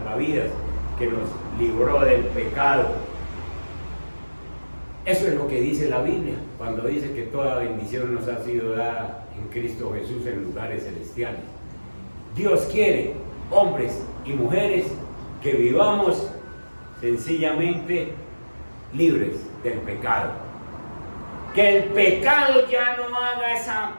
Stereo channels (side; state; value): both; inverted; correlation -1.00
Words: que nos libró del pecado. Eso es lo que dice la Biblia, cuando dice que toda bendición nos ha sido dada en Cristo Jesús en lugares celestiales. Dios quiere hombres y mujeres que vivamos sencillamente libres del pecado. Que el pecado ya no haga esa